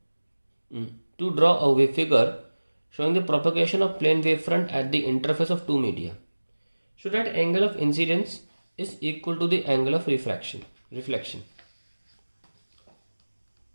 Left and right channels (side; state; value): both; inverted; correlation -1.00